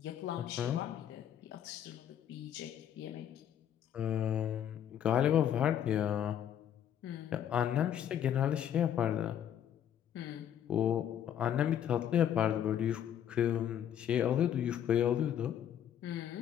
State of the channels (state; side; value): quieter; right; 9.9 dB